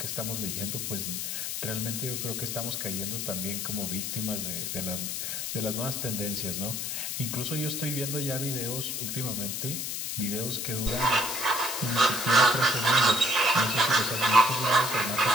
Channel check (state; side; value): noise; left; hiss, 3 dB below the sound